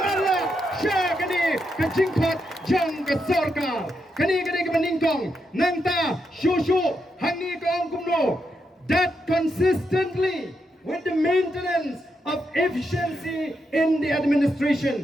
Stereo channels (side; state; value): both; normal; correlation 0.83